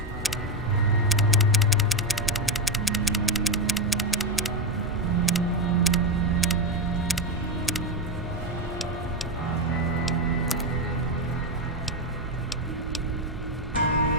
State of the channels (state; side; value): normal; both; correlation 0.10